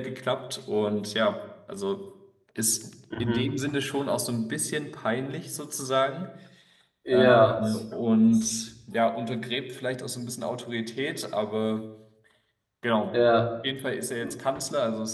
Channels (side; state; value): both; identical; correlation 1.00